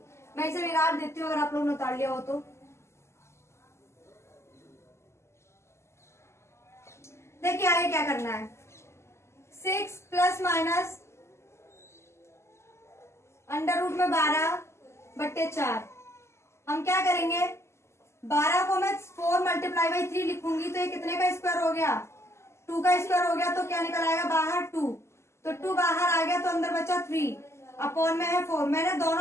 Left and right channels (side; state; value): right; late; 0.13 ms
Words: मैं इसे बिगाड़ देती हूँ अगर आप लोग ने उतार लिया हो तो। देखिए आगे क्या करना है, 6 प्लस माइनस में 12/4। हम क्या करेंगे, 12 को मैं 4 × 3 लिखूंगी तो ये कितने का स्क्वायर हो गया, 2 का स्क्वायर हो गया। तो क्या निकल आएगा बाहर 2, तो 2 बाहर आ गया तो अंदर बचा 3 अपॉन में है 4। मैंने